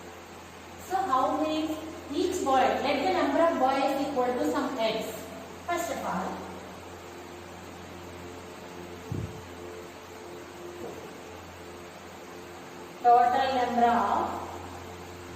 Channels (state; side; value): identical; both; correlation 1.00